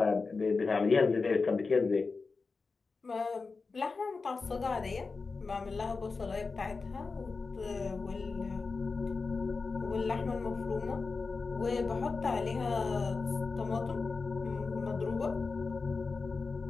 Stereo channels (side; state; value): right; quieter; 4.3 dB